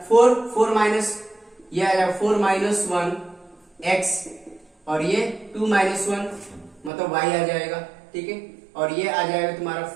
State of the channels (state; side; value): drops out; left; at 6.9 s